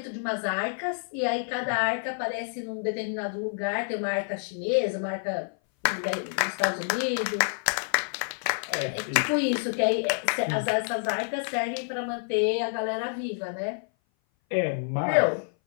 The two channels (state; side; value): silent; right; 57 dB below the other